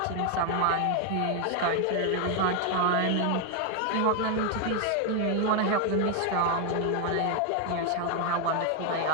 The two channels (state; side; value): different; both; correlation 0.01